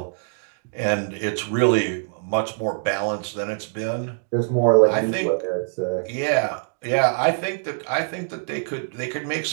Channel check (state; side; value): silent; left; digital silence